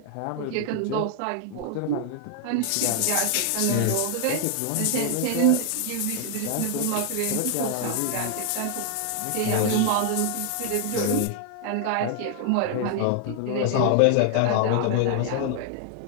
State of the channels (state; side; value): different; both; correlation 0.00